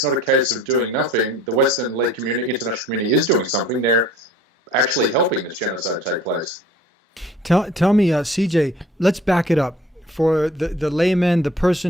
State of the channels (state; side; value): normal; both; correlation 0.50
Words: not a case of doing nothing. The Western-led international community is doing something. They're actually helping this genocide take place. Tell me, CJ, let's back it up. For the layman, the